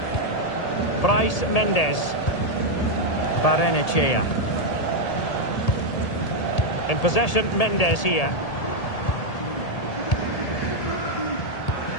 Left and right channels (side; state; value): right; late; 1.8 ms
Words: Bryce Mendes. Barrenechea. In possession, Mendes here.